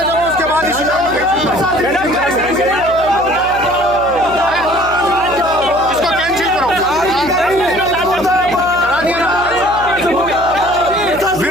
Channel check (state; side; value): noise; right; hum, 15 dB below the sound